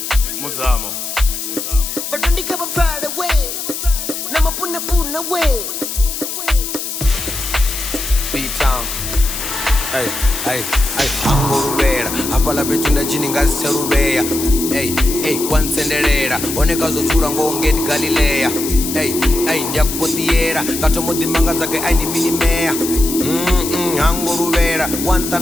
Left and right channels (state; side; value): noise; left; hiss, 5 dB below the sound